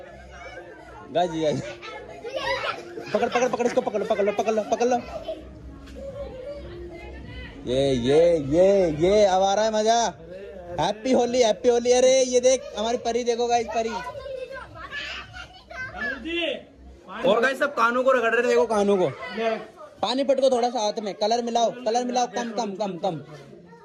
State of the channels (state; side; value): identical; both; correlation 1.00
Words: गाइस पकड़ इसको, पकड़ लो। ये अब आ रहा है मजा। हैप्पी होली। अरे ये देख हमारी परी देखो गाइस, परी। और गाइस सब कानों को रगड़ रहे थे, देखो कानों को। पानी पटको थोड़ा सा हाथ में, कलर मिलाओ कम।